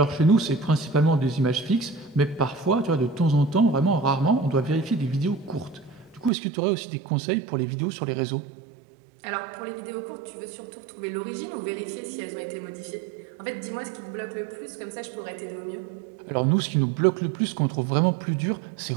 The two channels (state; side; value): drops out; left; at 6.3 s